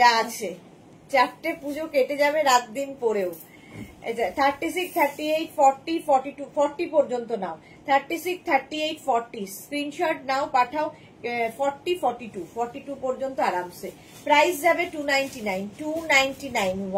যা আছে, 4টে পুজো কেটে যাবে রাত দিন পরেও। 36, 38, 40, 42, 40 পর্যন্ত নাও। 36, 38, 40 স্ক্রিনশট নাও, পাঠাও। 40, 42, 42 পর্যন্ত আরামসে। প্রাইস যাবে 299, 299।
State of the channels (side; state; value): both; identical; correlation 1.00